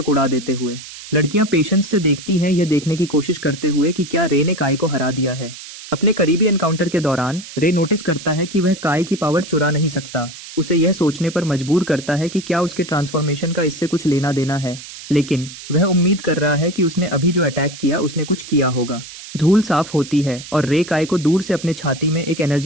उड़ा देते हुए। लड़कियां पेशेंस से देखती हैं, यह देखने की कोशिश करते हुए कि क्या रे ने काई को हरा दिया है। अपने करीबी एनकाउंटर के दौरान रे नोटिस करता है कि वह काई की पावर चुरा नहीं सकता। उसे यह सोचने पर मजबूर करता है कि क्या उसके ट्रांसफॉर्मेशन का इससे कुछ लेना देना है, लेकिन वह उम्मीद कर रहा है कि उसने अभी जो अटैक किया उसने कुछ किया होगा। धूल साफ होती है और रे काई को दूर से अपने छाती में एक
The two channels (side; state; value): right; noise; hiss, 14 dB below the sound